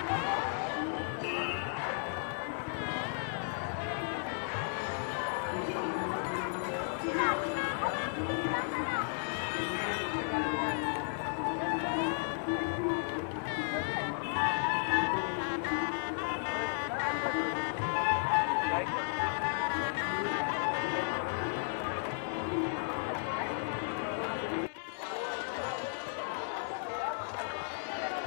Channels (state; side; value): silent; right; 55 dB below the other